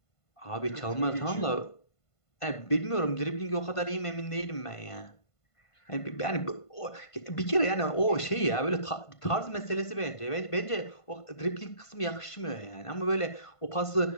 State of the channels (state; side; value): late; right; 1.5 ms